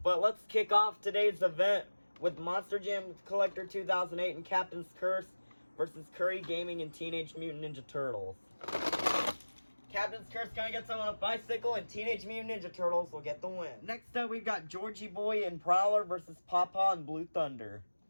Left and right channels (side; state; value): both; inverted; correlation -1.00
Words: But let's kick off today's event with Monster Jam Collector 2008 and Captain's Curse versus Curry Gaming and Teenage Mutant Ninja Turtles. Captain's Curse gonna get someone on a bicycle, and Teenage Mutant Ninja Turtles will get the win. Next up, we've got Georgie Boy and Prowler versus Pawpaw and Blue Thunder.